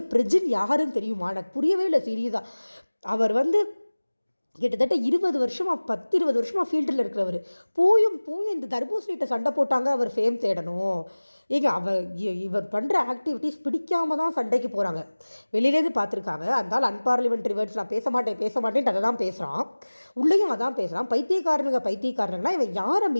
பிரஜின் யாருன்னு தெரியுமா? எனக்கு புரியவே இல்லை சீரியஸாக. அவர் வந்து கிட்டத்தட்ட 20 வருஷமாக 10-20 வருஷமாக ஃபீல்டில் இருக்கிறவர். போயும் இந்த தர்பூசணிகிட்ட சண்டை போட்டாங்க அவர் ஃபேம் தேடணும். இவர் பண்ணுற ஆக்டிவிட்டீஸ் பிடிக்காமல் தான் சண்டைக்கு போகிறாங்க. வெளியிலேருந்து பார்த்துருக்காங்க. அதனால் அன்பார்லிமெண்ட்ரி வேர்ட்ஸ் நான் பேச மாட்டேன்ட்டு அதை தான் பேசுகிறான். உள்ளேயும் அதான் பேசுகிறான். பைத்தியக்காரனுங்கன்னா இவன் யாரை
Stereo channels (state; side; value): inverted; both; correlation -1.00